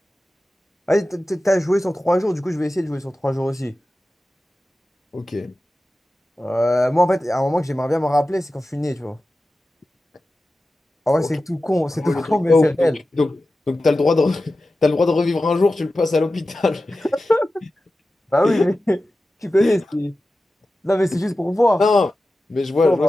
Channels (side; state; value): both; normal; correlation 0.94